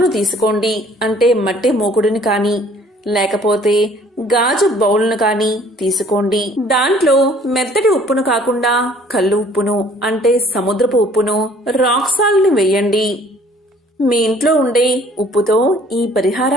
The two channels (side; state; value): both; normal; correlation 0.56